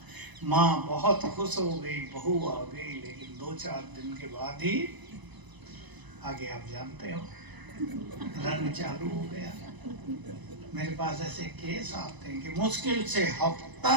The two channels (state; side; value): late; left; 1.0 ms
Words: माँ बहुत खुश हो गई, बहू आ गई, लेकिन 2-4 दिन के बाद ही आगे आप जानते हो रंग चालू हो गया। मेरे पास ऐसे केस आते हैं कि मुश्किल से हफ्ता